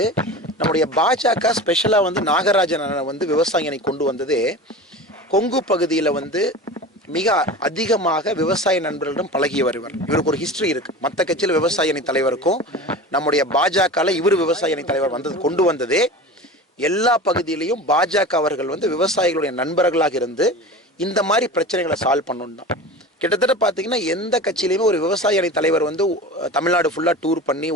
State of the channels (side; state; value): both; normal; correlation 0.33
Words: நம்முடைய பாஜக ஸ்பெஷலாக வந்து நாகராஜனை வந்து விவசாயினை கொண்டு வந்ததே கொங்கு பகுதியில் வந்து மிக அதிகமாக விவசாய நண்பர்களிடம் பழகிய வருவர். இவருக்கு ஒரு ஹிஸ்டரி இருக்கு. மற்ற கட்சியில் விவசாய அணி தலைவருக்கும் நம்முடைய பாஜகவில் இவர் விவசாய அணி தலைவர் வந்தது கொண்டு வந்ததே எல்லா பகுதியிலையும் பாஜக அவர்கள் வந்து விவசாயிகளுடைய நண்பர்களாக இருந்து இந்த மாதிரி பிரச்சனைகளை சால்வ் பண்ணணும் தான். கிட்டத்தட்ட பார்த்தீங்கன்னா எந்த கட்சியிலையுமே ஒரு விவசாய அணி தலைவர் வந்து தமிழ்நாடு ஃபுல்லாக டூர் பண்ணி